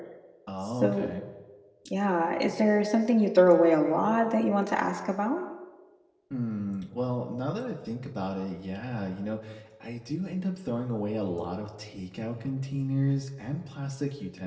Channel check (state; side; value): identical; both; correlation 1.00